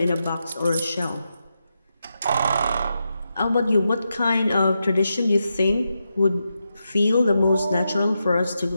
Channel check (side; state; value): both; inverted; correlation -0.86